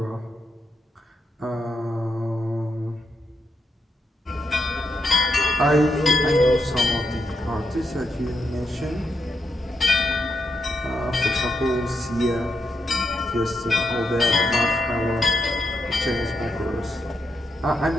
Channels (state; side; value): normal; both; correlation 0.82